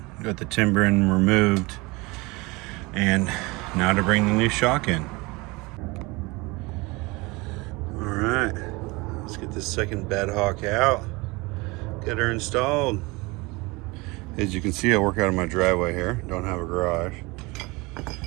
got the timbering removed, and now to bring the new shock in. All right. Let's get this second bed hawk out, get her installed. As you can see, I work out of my driveway here, don't have a garage.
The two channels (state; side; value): quieter; left; 24.7 dB